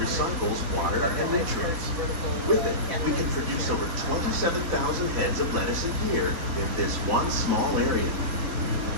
water and nutrients. With it, we can produce over 27,000 heads of lettuce a year in this one small area.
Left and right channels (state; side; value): late; left; 3.6 ms